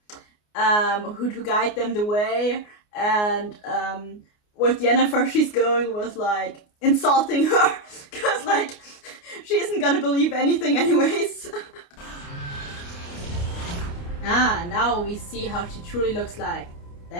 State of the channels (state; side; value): late; right; 29 ms